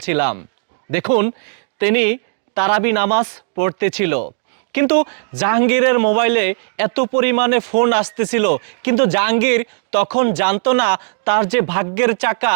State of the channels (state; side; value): silent; left; 61 dB below the other